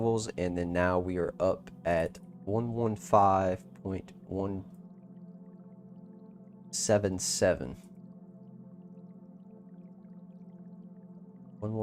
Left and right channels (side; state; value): both; identical; correlation 1.00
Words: and then now we are up at 115.177.